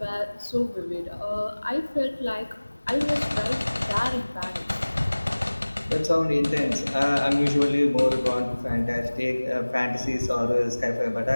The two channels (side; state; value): both; inverted; correlation -1.00